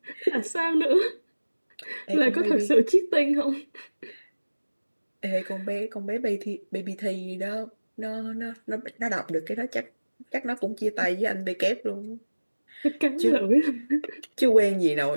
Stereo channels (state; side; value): inverted; both; correlation -1.00